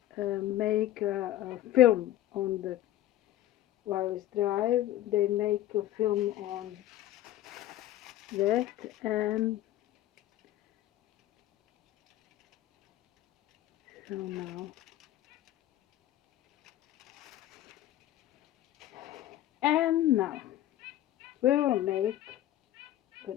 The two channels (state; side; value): quieter; right; 13.7 dB